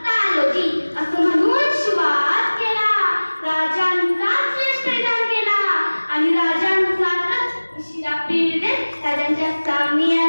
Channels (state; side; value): inverted; both; correlation -1.00